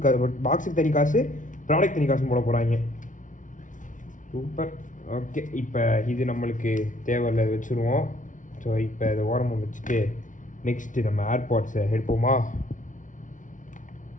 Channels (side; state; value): right; late; 0.37 ms